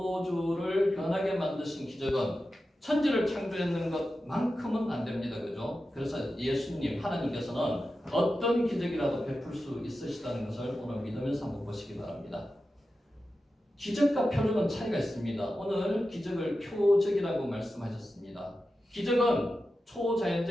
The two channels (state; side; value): normal; both; correlation 0.92